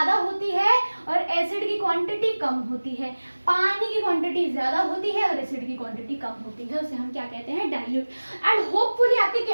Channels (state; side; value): inverted; both; correlation -1.00